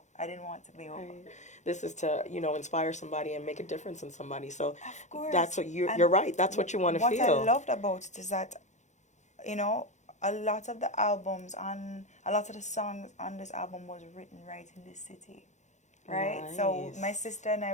I didn't want to be over. This is to, inspire somebody and make a difference in somebody. So of course. That's what you're right. That's what you want to feel. What I loved about it is that, a lot of the songs on this album was written right in this city. Right? Nice. So my sister and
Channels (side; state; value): right; late; 0.34 ms